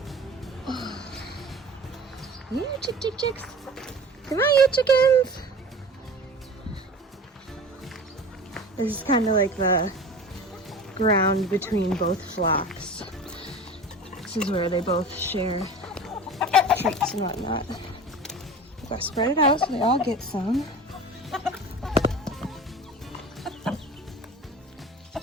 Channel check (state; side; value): normal; both; correlation 0.37